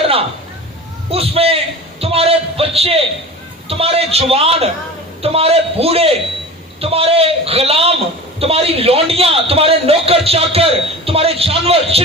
اس میں تمہارے بچے، تمہارے جوان، تمہارے بوڑھے، تمہارے غلام، تمہاری لونڈیاں، تمہارے نوکر چاکر، تمہارے جانور،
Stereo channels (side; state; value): both; normal; correlation 0.35